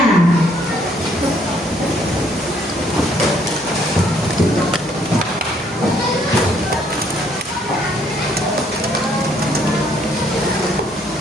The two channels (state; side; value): normal; both; correlation 0.66